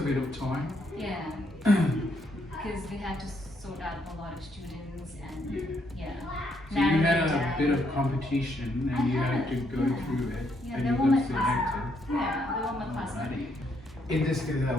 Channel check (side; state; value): both; normal; correlation 0.74